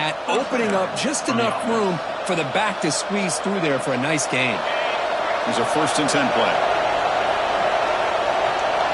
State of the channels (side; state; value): both; identical; correlation 1.00